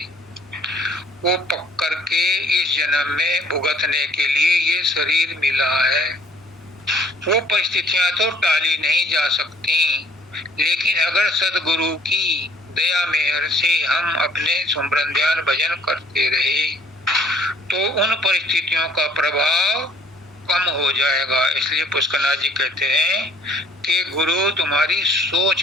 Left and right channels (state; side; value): normal; both; correlation 0.59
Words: वो पक करके इस जन्म में भुगतने के लिए ये शरीर मिला है। वो परिस्थितियां तो टाली नहीं जा सकती, लेकिन अगर सद्गुरु की दया मेहर से हम अपने सुमरन ध्यान भजन करते रहे तो उन परिस्थितियों का प्रभाव कम हो जाएगा। इसलिए पुष्करनाथ जी कहते हैं कि गुरु तुम्हारी